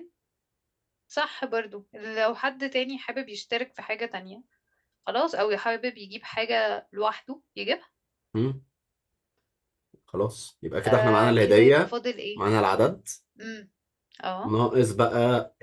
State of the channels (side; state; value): both; identical; correlation 1.00